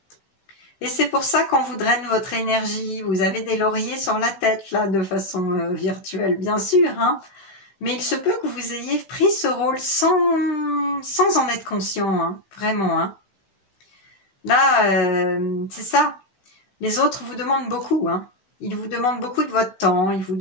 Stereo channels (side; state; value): right; late; 15 ms